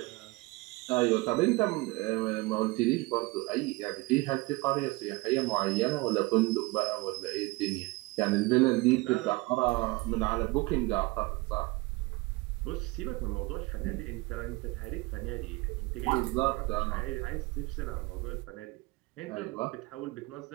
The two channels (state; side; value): quieter; left; 23.3 dB